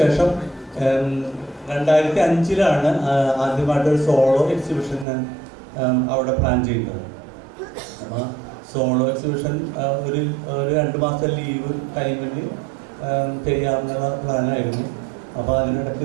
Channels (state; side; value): drops out; left; at 5.1 s